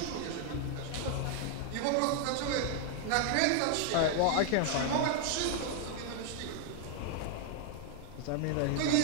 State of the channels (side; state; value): both; different; correlation 0.00